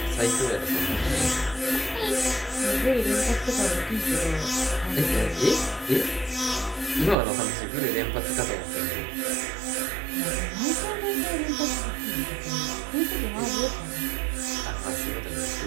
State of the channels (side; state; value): left; drops out; at 7.2 s